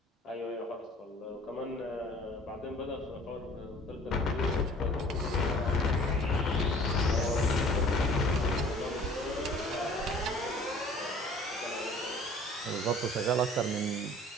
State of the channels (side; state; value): both; normal; correlation 0.50